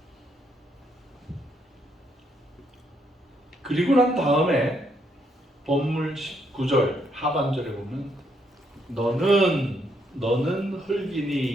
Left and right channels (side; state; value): both; normal; correlation 0.74